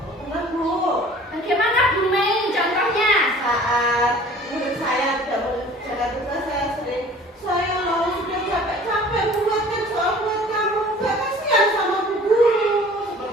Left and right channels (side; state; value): both; normal; correlation 0.48